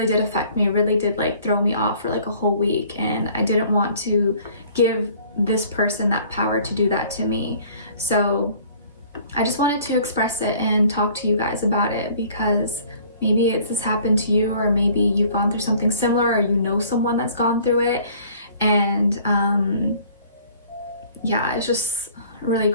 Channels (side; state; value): both; inverted; correlation -0.54